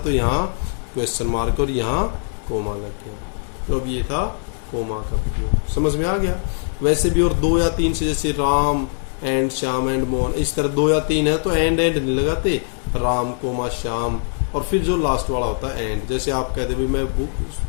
यहाँ क्वेश्चन मार्क और यहाँ कोमा लग गया। तो अब ये था कोमा का प्रयोग। समझ में आ गया। वैसे भी और 2 या 3 से, जैसे राम एंड श्याम एंड मोहन, इस तरह 2 या 3 है तो एंड नहीं लगाते, राम कोमा श्याम, और फिर जो लास्ट वाला होता है एंड। जैसे आप कहते भी, मैं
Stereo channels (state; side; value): silent; right; digital silence